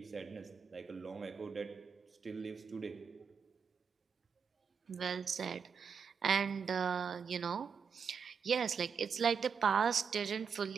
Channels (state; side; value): quieter; left; 6.3 dB